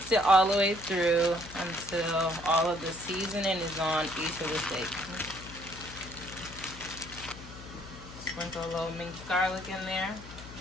it all the way through until all of the seasoning is on each of the steaks. Sprinkle a little minced garlic in there.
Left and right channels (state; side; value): noise; left; hum, 15 dB below the sound